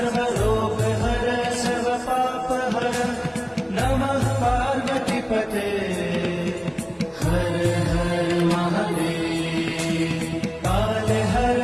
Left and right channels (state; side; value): identical; both; correlation 1.00